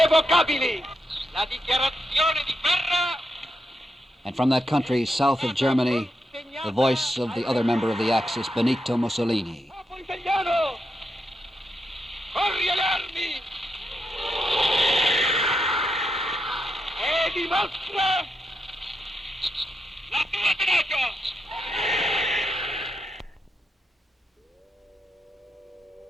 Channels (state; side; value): normal; both; correlation 0.84